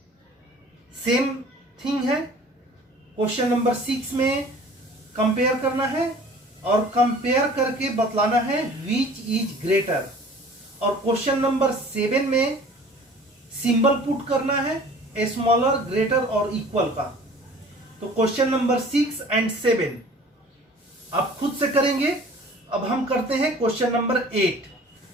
same thing है। क्वेश्चन नंबर 6 में कंपेयर करना है और कंपेयर करके बतलाना है विच इज ग्रेटर, और क्वेश्चन नंबर 7 में सिंबल पुट करना है स्मॉलर, ग्रेटर और इक्वल का। तो क्वेश्चन नंबर 6 एंड 7 आप खुद से करेंगे। अब हम करते हैं question number 8।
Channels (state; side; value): normal; both; correlation 0.47